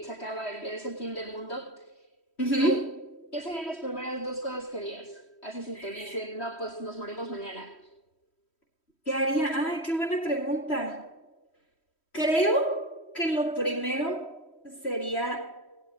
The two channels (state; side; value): late; right; 3.1 ms